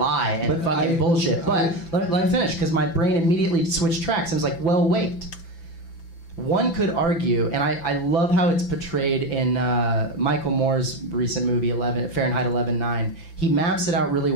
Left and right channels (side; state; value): right; late; 5.9 ms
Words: and bullshit. But let me finish, because my brain immediately switched tracks and was like, well, wait. one could argue, and I love how it's portrayed in Michael Moore's recent movie, Fahrenheit 11/9. He maps it out really